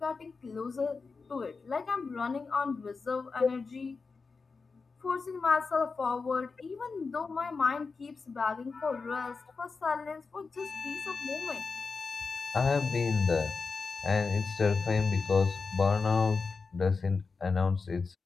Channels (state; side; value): quieter; right; 4.6 dB